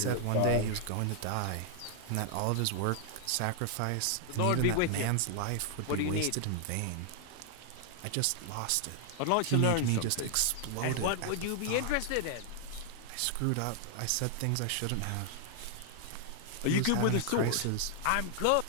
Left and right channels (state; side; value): different; both; correlation 0.00